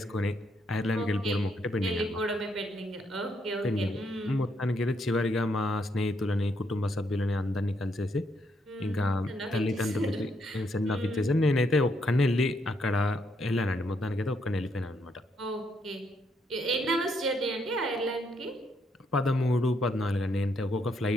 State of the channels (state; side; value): normal; both; correlation 0.75